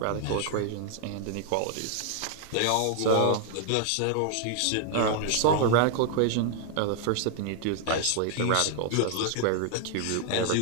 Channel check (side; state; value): both; different; correlation 0.00